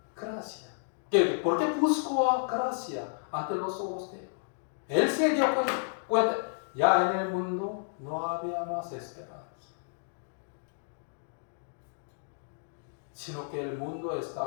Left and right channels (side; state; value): right; silent; digital silence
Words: gracia? ¿Por qué buscó gracia ante los ojos de Dios? Él se dio cuenta, ya en el mundo no había más esperanza, sino que el mundo